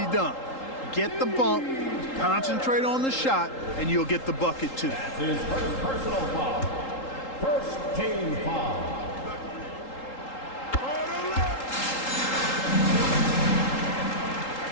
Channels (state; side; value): late; right; 3.8 ms